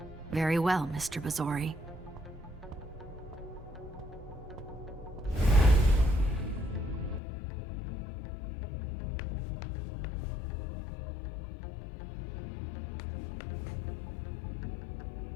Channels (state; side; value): drops out; right; at 7.2 s